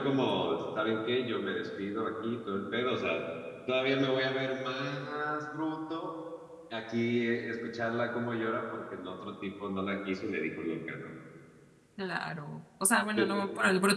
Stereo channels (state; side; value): identical; both; correlation 1.00